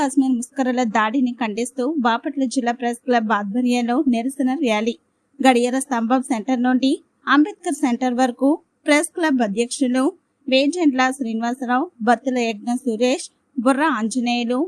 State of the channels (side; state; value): both; identical; correlation 1.00